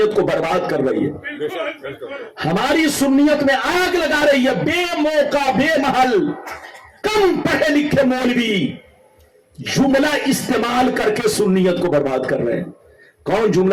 کو برباد کر رہی ہے, ہماری سنیت میں آگ لگا رہی ہے. بے موقع بے محل کم پڑھے لکھے مولوی جملہ استعمال کر کے سنیت کو برباد کر رہے ہیں. کون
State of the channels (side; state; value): both; identical; correlation 1.00